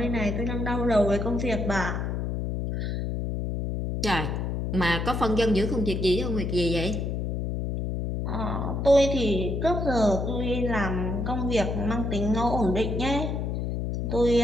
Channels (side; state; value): left; noise; hum, 2 dB below the sound